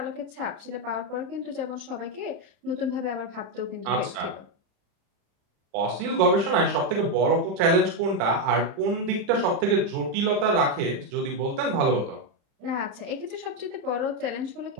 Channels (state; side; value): late; left; 35 ms